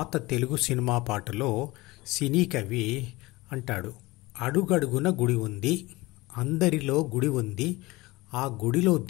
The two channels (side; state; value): right; quieter; 21.2 dB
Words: తెలుగు సినిమా పాటలో సినీ కవి అంటాడు, అడుగడుగున గుడి ఉంది, అందరిలో గుడి ఉంది, ఆ గుడిలో